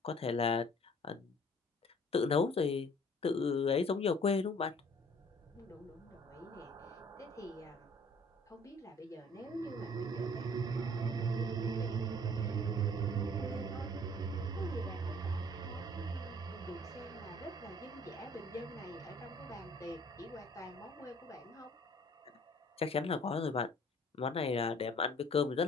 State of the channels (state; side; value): normal; both; correlation 0.54